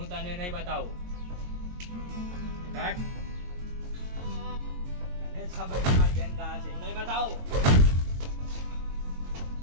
તને નહીં બતાવું. કાટ. તને જ ખબર છે મારી બેન ક્યાં છે. નહીં બતાવું.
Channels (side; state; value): left; late; 22 ms